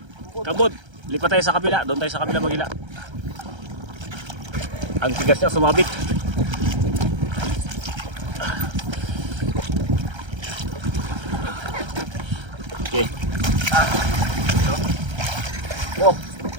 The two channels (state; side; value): late; left; 1.3 ms